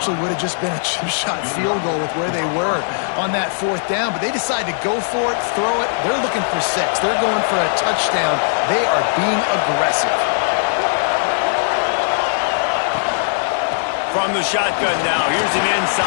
would have just been a chip shot field goal with where they were on that 4th down, but they decide to go for it, throw it. They're looking for 6. They're going for a touchdown. They are being aggressive. From the shotgun now, here's an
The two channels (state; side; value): silent; right; digital silence